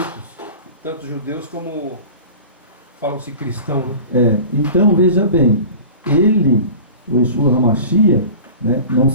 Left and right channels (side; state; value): both; inverted; correlation -0.38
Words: tanto judeus como falam-se cristão, né? Então veja bem, ele, o Yeshua HaMashiach, né, não